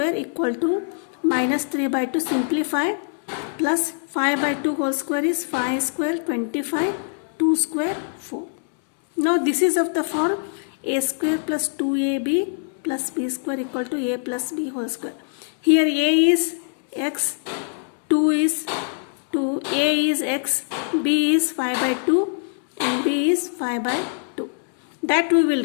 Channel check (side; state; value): right; silent; 63 dB below the other